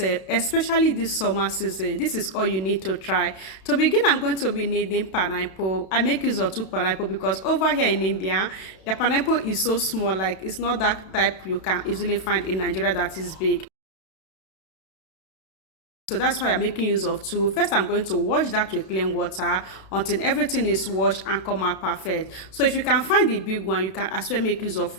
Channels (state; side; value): late; right; 32 ms